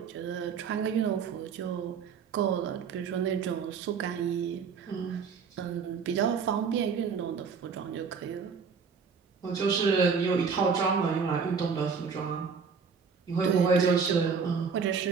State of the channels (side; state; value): left; quieter; 5.9 dB